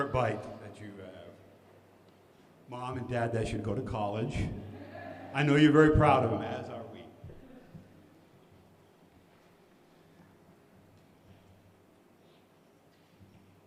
bike that you have. Mom and Dad, that should go to college. I know you're very proud of him, as are we.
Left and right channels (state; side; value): identical; both; correlation 1.00